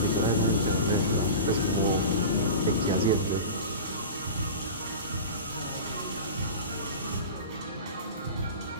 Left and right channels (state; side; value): inverted; both; correlation -0.31